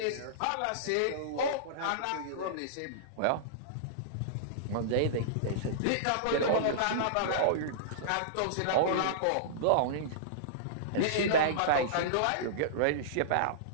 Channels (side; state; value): both; different; correlation -0.03